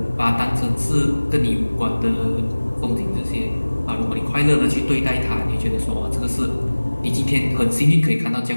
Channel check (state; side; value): inverted; both; correlation -1.00